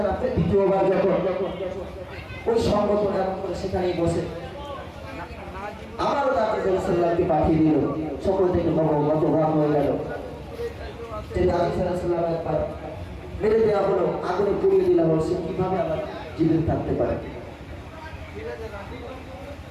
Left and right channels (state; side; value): identical; both; correlation 1.00